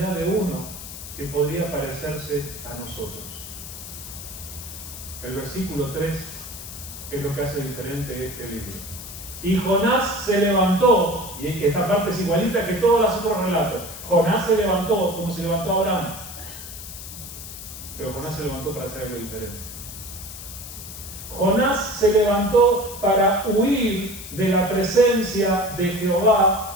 de uno que podría parecerse a nosotros. El versículo 3 es lo que hace diferente este libro. Y Jonás se levantó, y esta parte es igualita que todos los otros relatos. Jonás se levantó como se levantó Abraham, pero Jonás se levantó para hacer algo diferente. Jonás se levantó para huir de la presencia de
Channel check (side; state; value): left; noise; hiss, 12 dB below the sound